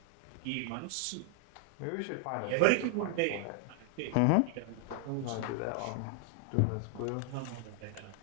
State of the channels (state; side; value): different; both; correlation 0.00